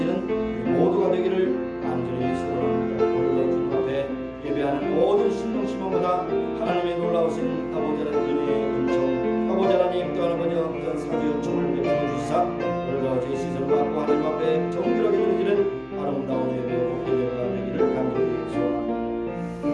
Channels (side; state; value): both; identical; correlation 1.00